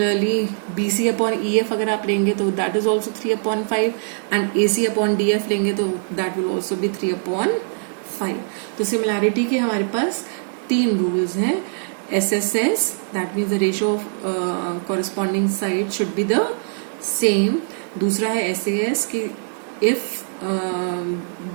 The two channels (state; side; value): silent; left; digital silence